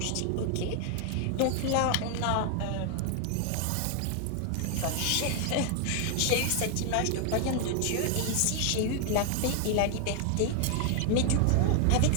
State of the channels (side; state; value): both; different; correlation 0.00